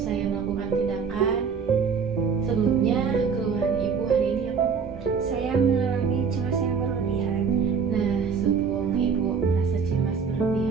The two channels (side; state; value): left; quieter; 6.0 dB